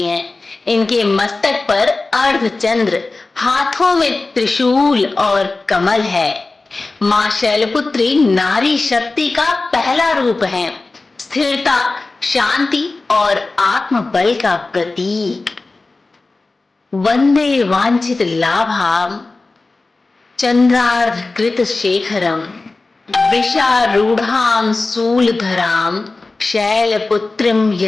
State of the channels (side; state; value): right; quieter; 3.5 dB